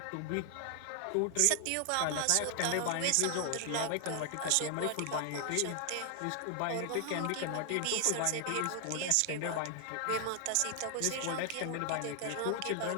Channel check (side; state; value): both; different; correlation 0.00